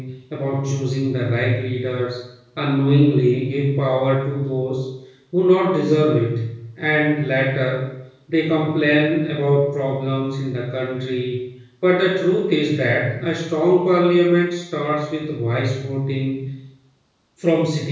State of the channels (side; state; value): both; identical; correlation 1.00